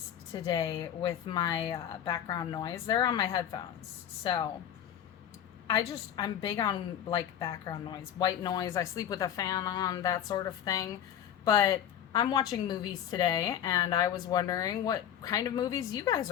today with my background noise. They're on my headphones. So, I'm big on like background noise, white noise. I sleep with a fan on, that sort of thing. But I'm watching movies today, and I was wondering what kind of movies you guys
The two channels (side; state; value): right; quieter; 10.0 dB